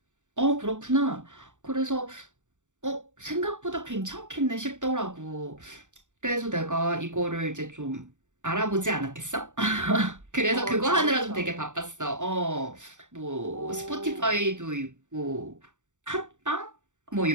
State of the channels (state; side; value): late; left; 0.85 ms